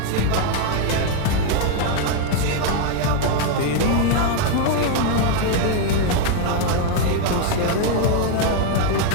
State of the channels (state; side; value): different; both; correlation 0.01